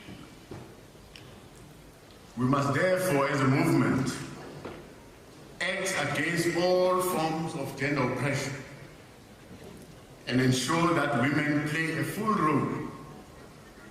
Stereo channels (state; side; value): identical; both; correlation 1.00